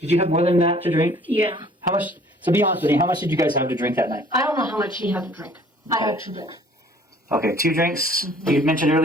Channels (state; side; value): normal; both; correlation 0.54